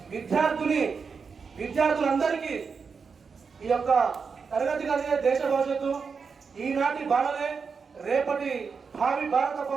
విద్యార్థులందరికీ ఈ యొక్క తరగతి గదియే దేశ భవిష్యత్తు, ఈనాటి బాలలే రేపటి భావి భారత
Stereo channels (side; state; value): left; quieter; 5.5 dB